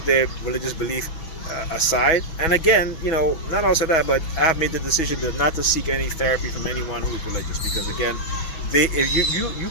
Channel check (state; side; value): late; right; 6.2 ms